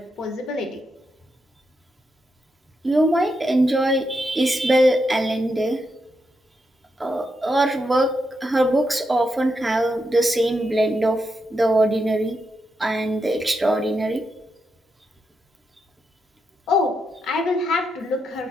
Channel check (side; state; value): both; normal; correlation 0.84